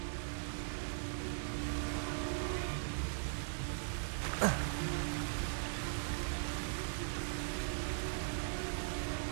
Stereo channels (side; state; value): left; silent; digital silence